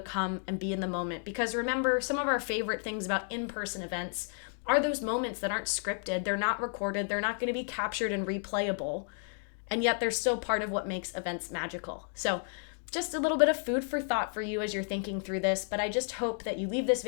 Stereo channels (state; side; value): silent; right; 56 dB below the other